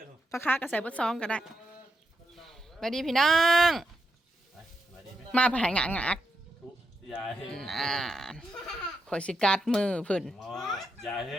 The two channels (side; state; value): both; normal; correlation 0.83